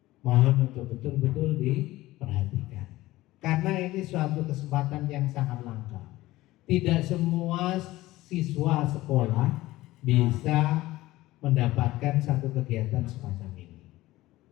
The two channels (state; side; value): quieter; right; 17.5 dB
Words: mohon untuk betul-betul diperhatikan, karena ini suatu kesempatan yang sangat langka. Tidak semua siswa sekolah bisa mendapatkan satu kegiatan semacam ini.